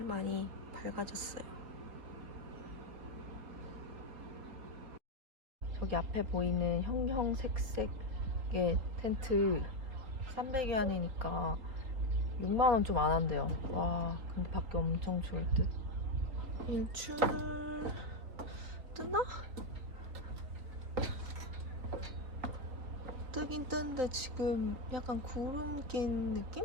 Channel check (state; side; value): late; left; 3.7 ms